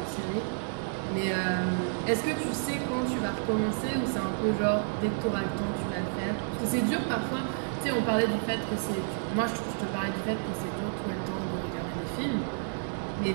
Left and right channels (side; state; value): left; silent; 56 dB below the other